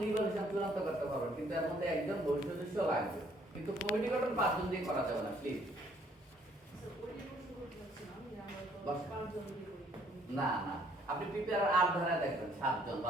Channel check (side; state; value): both; normal; correlation 0.64